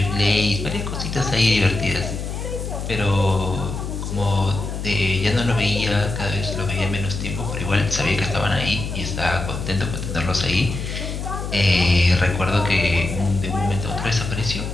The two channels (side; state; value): left; noise; hum, 5 dB below the sound